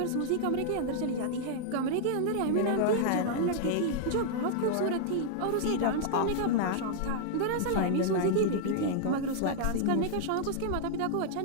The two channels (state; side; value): different; both; correlation -0.01